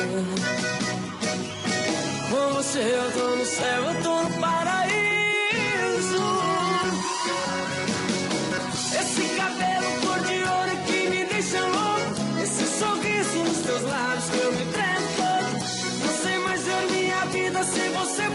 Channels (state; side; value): identical; both; correlation 1.00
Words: Com você eu tô no céu.